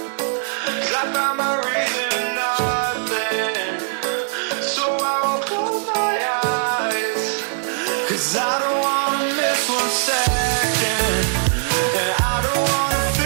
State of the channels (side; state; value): left; silent; digital silence